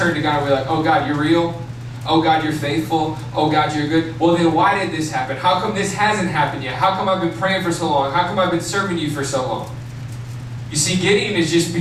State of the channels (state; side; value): identical; both; correlation 1.00